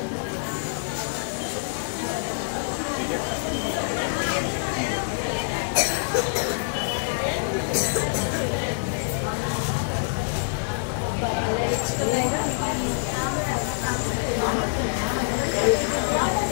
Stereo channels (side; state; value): right; silent; digital silence